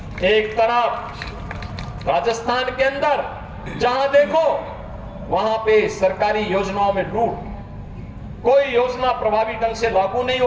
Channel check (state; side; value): identical; both; correlation 1.00